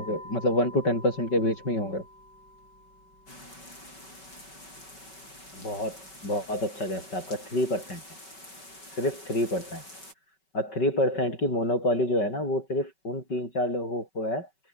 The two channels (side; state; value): right; late; 5.3 ms